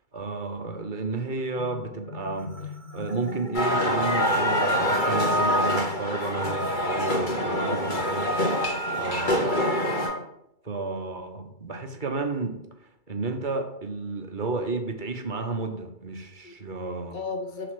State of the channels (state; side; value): late; right; 2.3 ms